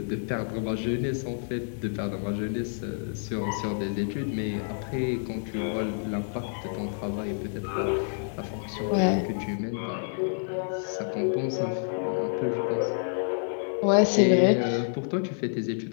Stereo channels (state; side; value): silent; right; digital silence